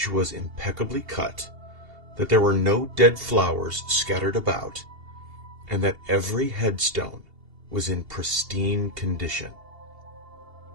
was impeccably cut, that there were no dead flowers scattered about, and that every headstone was in pristine condition.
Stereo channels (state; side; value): late; left; 2.8 ms